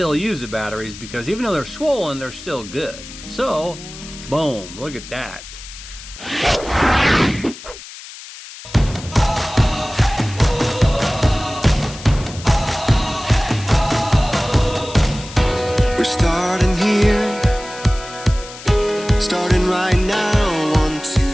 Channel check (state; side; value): noise; left; hiss, 15 dB below the sound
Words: use the batteries, because even though they're swollen, they're still good. So, boom, look at that. We're starting here, starting right now. 1, 2,